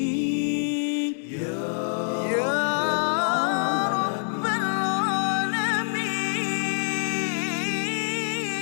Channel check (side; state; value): right; silent; digital silence